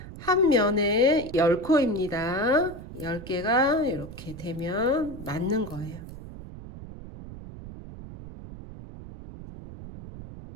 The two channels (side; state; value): right; noise; rumble, 14 dB below the sound